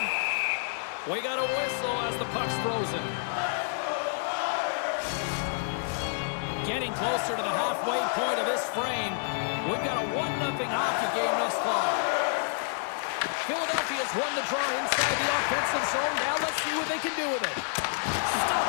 We got a whistle as the puck's frozen. Getting closer to the halfway point of this frame. We've got a 1-0 hockey game thus far. Philadelphia's won the draw inside the offensive zone. Now let's see what they can do with it.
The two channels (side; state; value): right; silent; digital silence